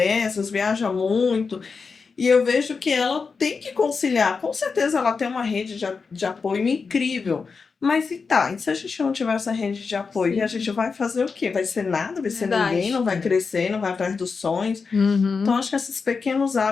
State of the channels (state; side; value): quieter; right; 5.0 dB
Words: viaja muito. E eu vejo que ela tem que conciliar. Com certeza ela tem uma rede de apoio incrível. Mas e se a gente não tiver essa rede de apoio, Sim. a gente vai fazer o quê? Vai ser nada, vai ser Verdade. ninguém, não vai crescer, não vai atrás dos sonhos. Uhum. Então, acho que esses pequenos